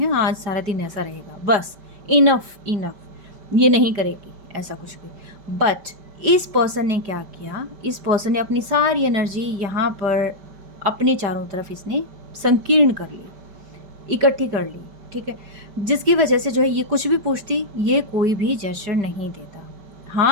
आज सारा दिन ऐसा रहेगा, बस इनफ, ये नहीं करेगी ऐसा कुछ भी। बट इस पर्सन ने क्या किया, इस पर्सन ने अपनी सारी एनर्जी यहाँ पर अपने चारों तरफ इसने संकीर्ण कर ली, इकट्ठी कर ली, ठीक है? जिसकी वजह से जो है ये कुछ भी पूछती, ये कोई भी जेस्चर नहीं देता,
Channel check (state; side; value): late; left; 5.1 ms